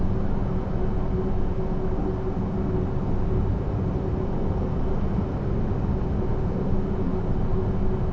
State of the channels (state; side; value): identical; both; correlation 1.00